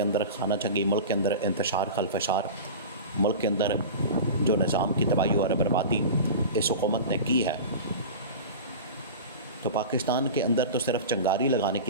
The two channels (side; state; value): both; inverted; correlation -0.31